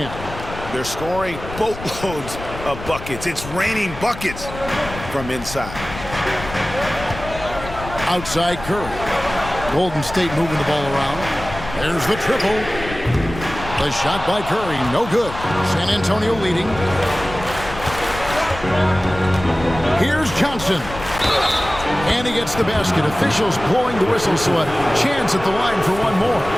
They're scoring boatloads of buckets. It's raining buckets from inside. Outside Curry. Golden State moving the ball around. There's the triple. The shot by Curry, no good. San Antonio leading. Here's Johnson. And he gets the basket. Officials blowing the whistle, so a chance at the line for one more.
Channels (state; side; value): noise; left; rumble, 12 dB below the sound